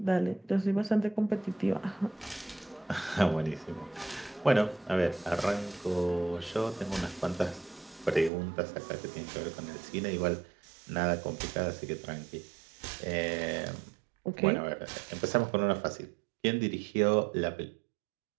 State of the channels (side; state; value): left; drops out; at 8.3 s